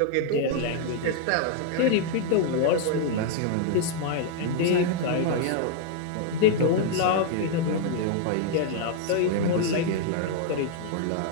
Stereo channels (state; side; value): different; both; correlation 0.00